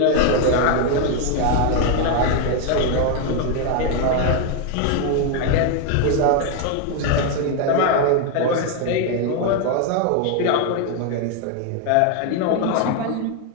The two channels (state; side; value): different; both; correlation 0.01